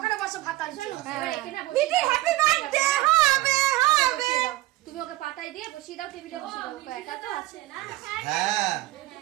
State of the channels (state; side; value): quieter; left; 17.0 dB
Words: বসো ভাত আছে এবার এখানে মিটি হ্যাপি বার্থডে হবে হবে তুমি ওকে পাতায় দিয়ে বসিয়ে দাও টেবিলে বসিয়ে দাও ওকে একা তো আছে না হ্যাঁ